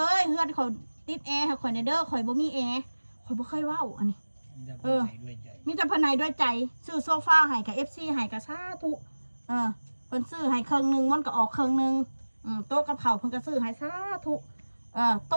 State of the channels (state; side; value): inverted; both; correlation -1.00